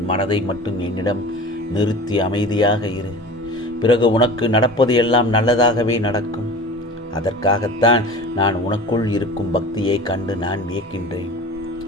மனதை மட்டும் என்னிடம் நிறுத்தி அமைதியாக இரு. பிறகு உனக்கு நடப்பது எல்லாம் நல்லதாகவே நடக்கும். அதற்காகத்தான் நான் உனக்குள் இருக்கும் பக்தியை கண்டு நான் வியக்கின்றேன்.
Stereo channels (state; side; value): normal; both; correlation 0.38